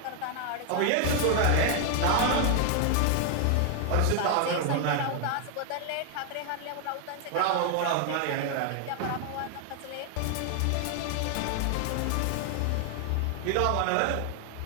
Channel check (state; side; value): different; both; correlation 0.00